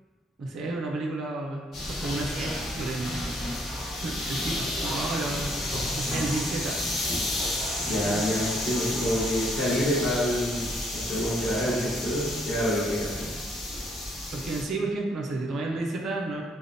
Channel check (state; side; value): normal; both; correlation 0.68